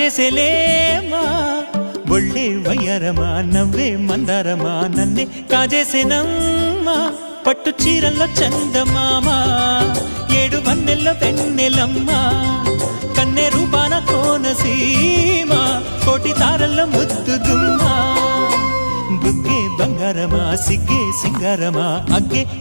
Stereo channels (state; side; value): inverted; both; correlation -1.00